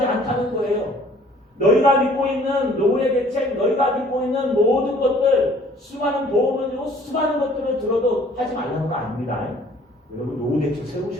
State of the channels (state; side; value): normal; both; correlation 0.55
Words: 않다는 거예요. 너희가 믿고 있는 노후의 대책, 너희가 믿고 있는 모든 것들, 수많은 보험을 들고 수많은 것들을 들어도 하지 말라는 거 아닙니다. 여러분 노후 대책